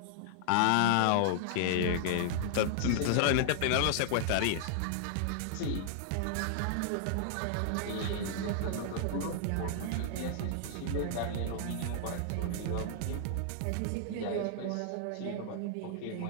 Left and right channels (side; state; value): both; different; correlation -0.01